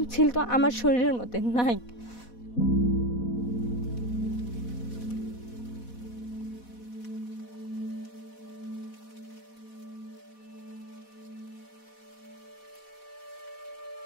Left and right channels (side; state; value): right; late; 4.1 ms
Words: ছিল তো আমার শরীরের মধ্যে নাই।